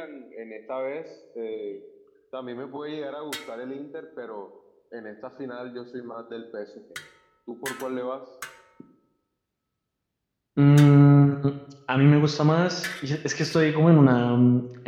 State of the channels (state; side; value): identical; both; correlation 1.00